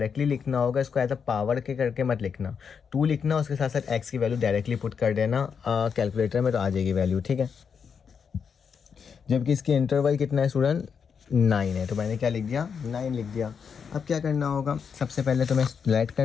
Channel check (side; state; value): right; quieter; 6.5 dB